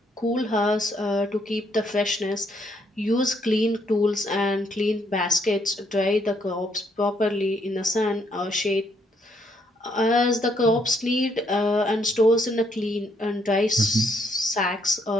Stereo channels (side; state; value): both; normal; correlation 0.71